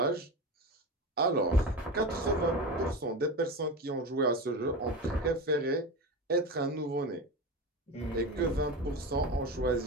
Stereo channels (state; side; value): normal; both; correlation 0.24